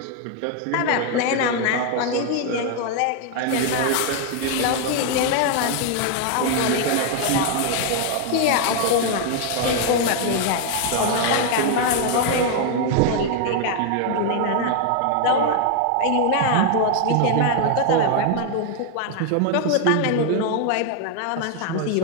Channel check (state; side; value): different; both; correlation 0.00